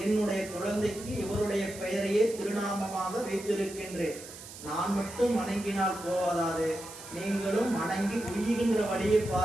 என்னுடைய குழந்தைக்கு இவருடைய பெயரையே திருநாமமாக வைத்திருக்கின்றேன். நான் மட்டும் வணங்கினால் போவதாது, நீங்களும் வணங்கி உய்கின்ற வழியை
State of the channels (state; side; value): noise; right; hiss, 14 dB below the sound